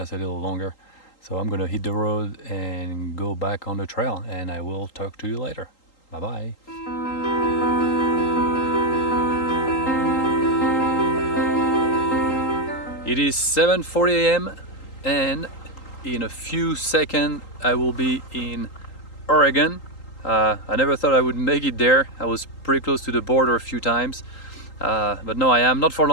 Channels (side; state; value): right; late; 3.8 ms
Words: a little longer. So I'm gonna hit the road and go back on the trail, and I will talk to you later. Bye bye. It is 7:40 a.m. and in a few seconds I will be in Oregon. I never thought I would make it there. I was pretty close to the border a few times, but no, I am not for